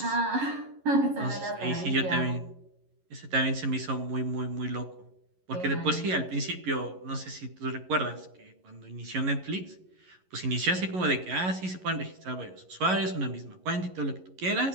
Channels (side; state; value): left; late; 11 ms